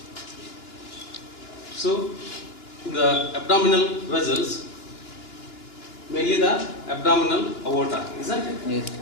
So, the abdominal vessels, mainly the abdominal aorta, isn't it? Yes.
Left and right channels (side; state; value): right; late; 2.9 ms